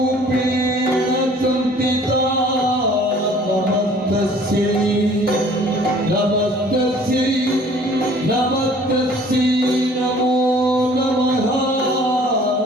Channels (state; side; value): normal; both; correlation 0.53